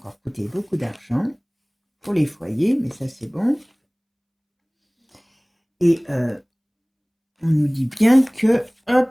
coûter beaucoup d'argent pour les foyers, mais ça, c'est bon. Et on nous dit bien que, hop,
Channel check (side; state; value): both; identical; correlation 1.00